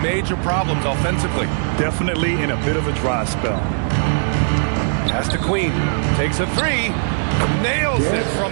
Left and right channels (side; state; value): left; silent; 66 dB below the other